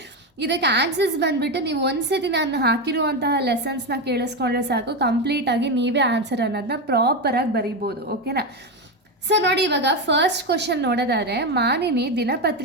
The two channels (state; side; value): normal; both; correlation 0.13